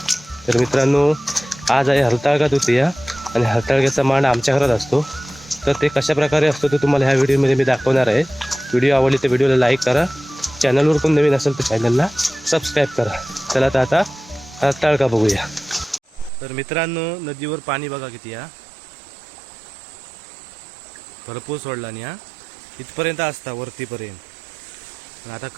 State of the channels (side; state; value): left; drops out; at 16.3 s